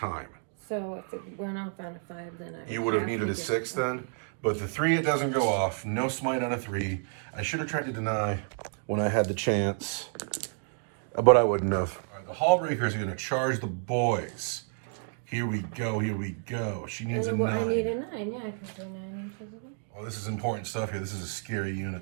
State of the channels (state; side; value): silent; left; 58 dB below the other